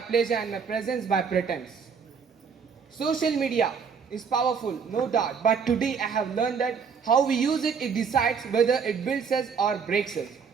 pleasure and my presence by pretense. Social media is powerful, no doubt, but today I have learned that how we use it, it decides whether it builds us or breaks us.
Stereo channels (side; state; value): left; quieter; 6.1 dB